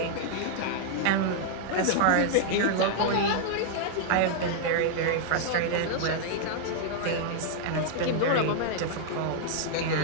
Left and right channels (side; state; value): both; different; correlation -0.01